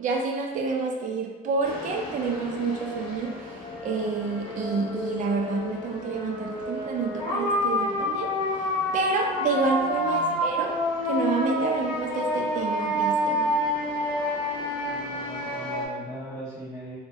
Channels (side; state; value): both; normal; correlation 0.31